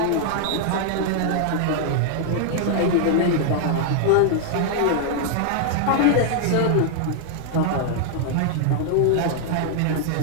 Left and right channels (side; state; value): both; different; correlation -0.01